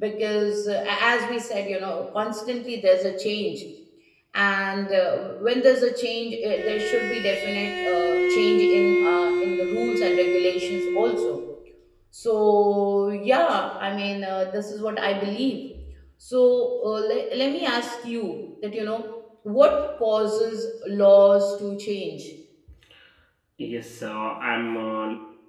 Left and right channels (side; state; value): both; identical; correlation 1.00